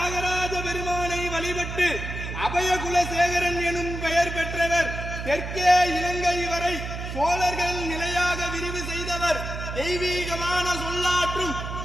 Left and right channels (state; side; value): noise; right; hum, 6 dB below the sound